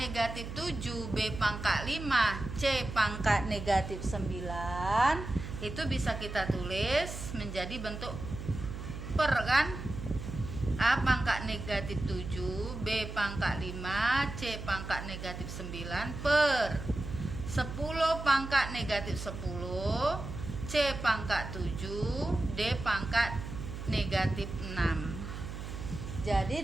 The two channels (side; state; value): right; noise; hum, 8 dB below the sound